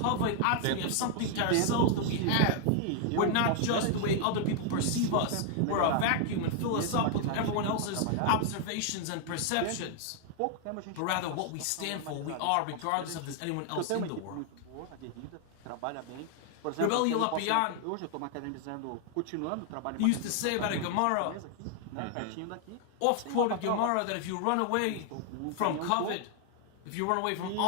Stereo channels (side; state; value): both; different; correlation 0.00